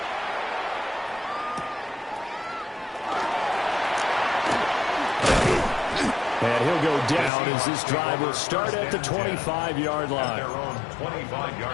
And he'll go down as this drive will start at the 25-yard line. Their own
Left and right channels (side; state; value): right; drops out; at 7.3 s